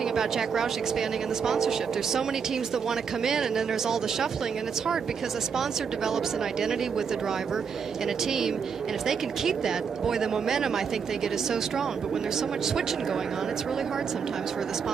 about Jack Roush expanding in the sponsorship, there's so many teams that want to come in, and then there's all the shuffling, and it's hard because a sponsor develops an identity with the driver and a team, and if they can keep that, boy, the momentum I think they get is so strong. But when there's so much switching going on, it's really hard sometimes for the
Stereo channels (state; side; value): quieter; left; 6.4 dB